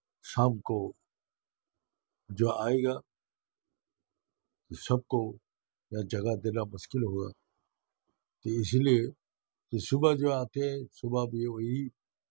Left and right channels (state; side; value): silent; left; digital silence